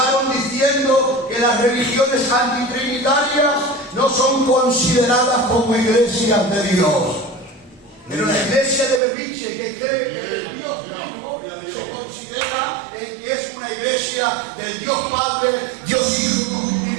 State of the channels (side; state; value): left; drops out; at 9.0 s